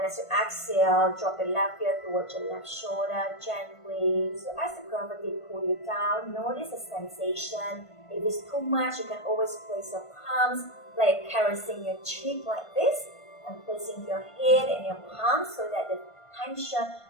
as you exhale, drop your left ear towards your left shoulder gently. So as the gravity pulls you down, notice the sensation. If it's too much, you can always place your palms, like caressing your cheek like this, and placing your head and your palms so that the tension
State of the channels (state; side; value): late; right; 1.5 ms